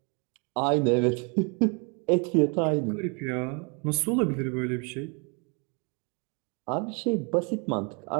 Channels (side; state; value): left; quieter; 34.7 dB